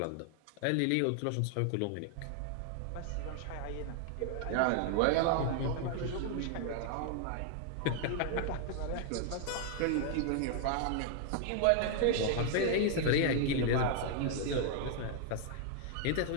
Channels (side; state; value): both; different; correlation 0.00